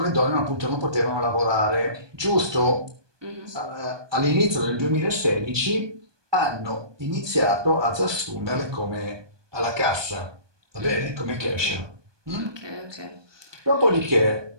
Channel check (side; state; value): left; late; 1.2 ms